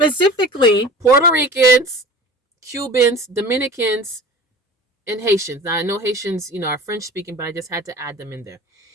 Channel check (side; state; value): both; normal; correlation 0.38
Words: Puerto Ricans, Cubans, Dominicans, and Haitians. Now I know Haitians, are French speaking, but I just had to add them in there.